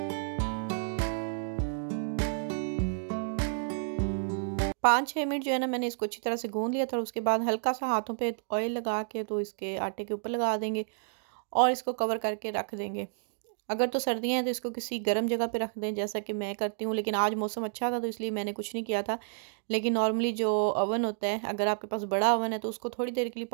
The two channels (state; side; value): silent; left; digital silence